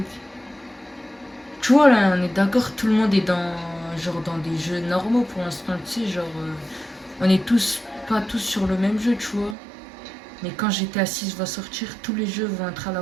Tu vois là, on est d'accord, tout le monde est dans des jeux normaux pour l'instant, tu sais, genre on est pas tous sur le même jeu, tu vois. Mais quand GTA 6 va sortir, tous les jeux vont être à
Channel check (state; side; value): drops out; left; at 9.6 s